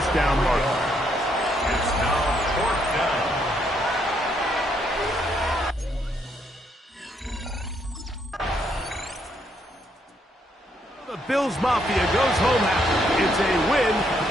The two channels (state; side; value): normal; both; correlation 0.73